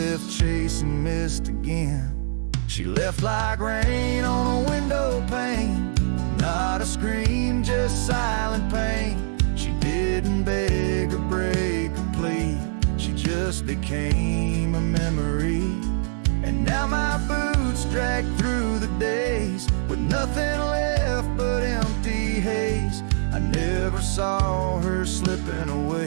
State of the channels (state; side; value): silent; left; digital silence